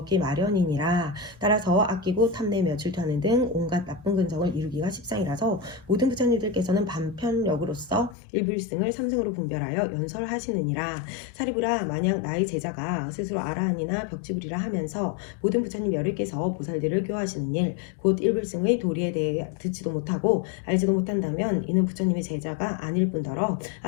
마련이니라. 따라서 아끼고 탐내며 질투하는 등 온갖 나쁜 근성을 이루기가 십상이라서 모든 부처님들께서는 반편력으로서 일불승을 삼승으로 분별하여 연설하시느니라. 사리부라, 만약 나의 제자가 스스로 아라한이나 벽지불이라 하면서 모든 부처님 여러께서 보살들을 교화하시는 일, 곧 일불승의 도리에 대해 듣지도 못하고 알지도 못한다면 이는 부처님의 제자가 아닐 뿐더러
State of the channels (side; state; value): right; drops out; at 8.2 s